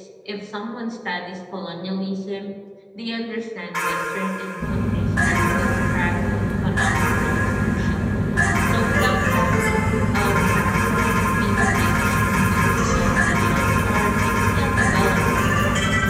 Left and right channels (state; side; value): identical; both; correlation 1.00